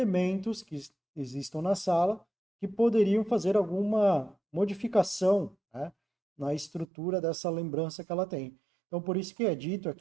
que existam na sala que poderiam fazer alguma modificação, né, na estrutura dessa lembrança que ela tem. Então, por isso que é dito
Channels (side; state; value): left; drops out; at 6.9 s